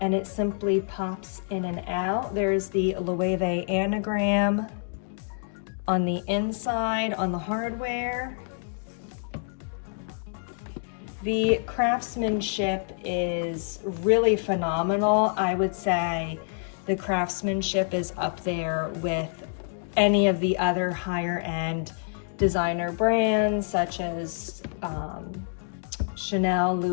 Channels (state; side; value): silent; right; digital silence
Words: and it simply pops in and out. There's the Loewe anagram on the inside on the hardware. The craftsmanship is really phenomenal. I would say the craftsmanship is up there with any of the other higher end designer brands such as Chanel,